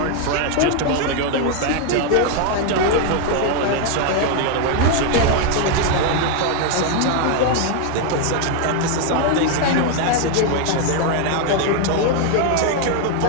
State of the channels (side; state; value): both; different; correlation 0.00